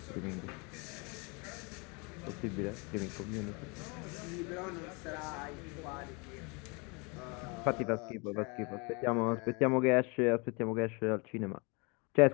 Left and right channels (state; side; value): quieter; right; 30.8 dB